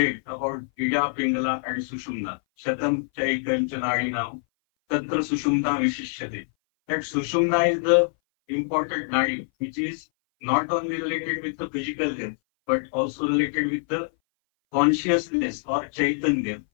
about Ida, Pingala, and Sushumna. Shatam Chaikam Chanadinam, Tatra Sushumna Vishishyate. That Sushumna is the important nadi, which is not only related with the physical health, but also related with the consciousness or Chaitanya,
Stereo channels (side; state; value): right; silent; 59 dB below the other